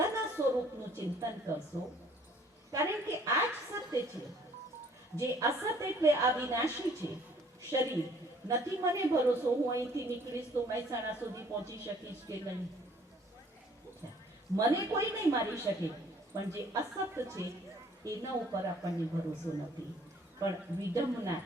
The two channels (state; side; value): normal; both; correlation 0.58